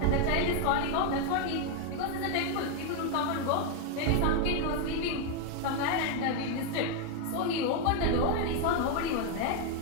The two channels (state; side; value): different; both; correlation 0.01